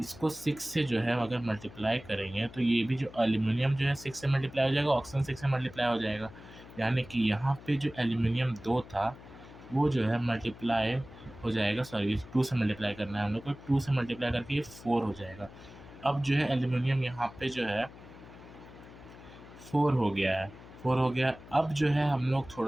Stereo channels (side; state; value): left; noise; hum, 18 dB below the sound